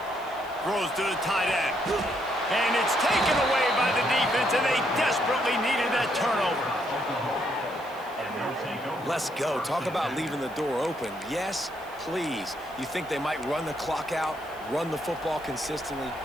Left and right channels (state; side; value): noise; right; hiss, 24 dB below the sound